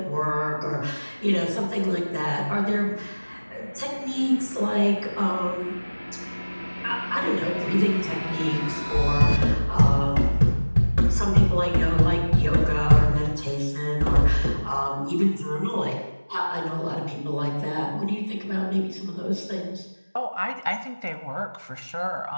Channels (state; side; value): inverted; both; correlation -1.00